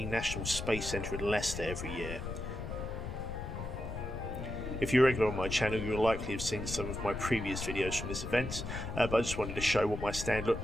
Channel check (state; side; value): noise; left; rumble, 6 dB below the sound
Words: National Space Centre in Leicester every year. If you're regular on my channel, you'll likely have seen some of my previous videos from this event, but I just wanted to show what my stand looked